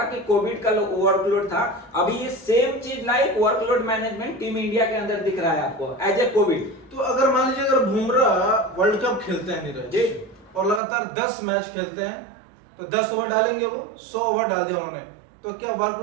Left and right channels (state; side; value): drops out; left; at 10.8 s